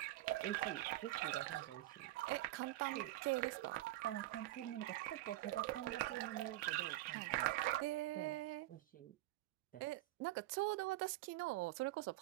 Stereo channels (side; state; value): left; quieter; 16.6 dB